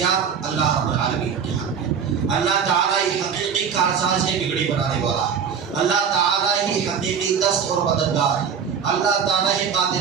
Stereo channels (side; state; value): left; quieter; 7.0 dB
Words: اللہ رب العالمین کے ہاتھ میں ہے. اللہ تعالیٰ ہی حقیقی کارساز ہے, بگڑی بنانے والا ہے. اللہ تعالیٰ ہی حقیقی دست اور مددگار ہے. اللہ تعالیٰ ہی